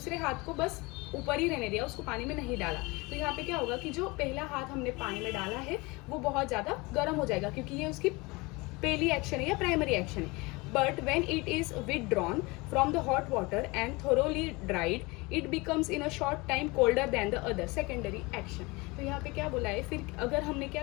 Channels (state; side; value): quieter; right; 24.7 dB